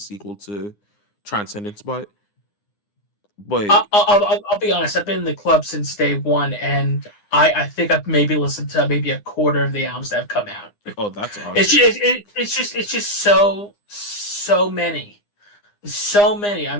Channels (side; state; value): right; late; 9.8 ms